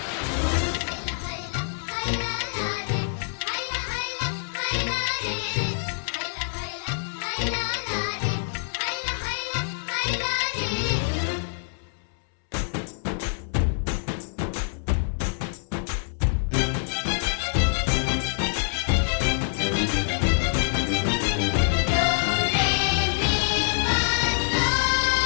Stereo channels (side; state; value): right; silent; 61 dB below the other